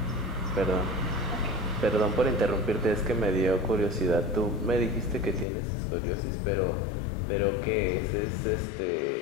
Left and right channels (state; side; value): drops out; right; at 5.5 s